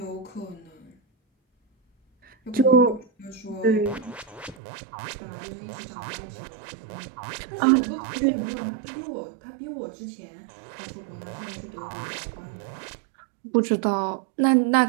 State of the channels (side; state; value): left; drops out; at 4.5 s